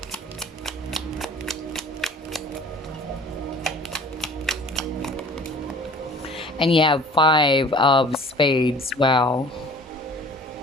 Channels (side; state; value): both; normal; correlation 0.48